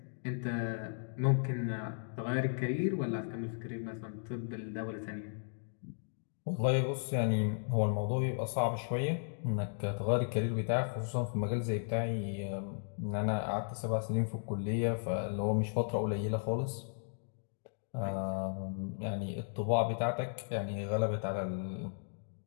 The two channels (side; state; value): right; silent; digital silence